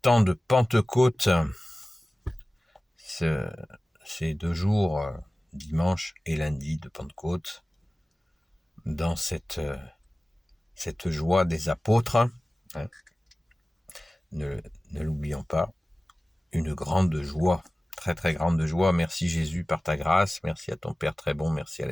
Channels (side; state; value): both; normal; correlation 0.97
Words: de Pentecôte, ces 2 jours, dimanche et lundi de Pentecôte, dans cette joie des apôtres. Ne l'oublions pas, une grande joie, très très grande joie. Merci Jésus par ta grâce, merci à ton Père très bon, merci à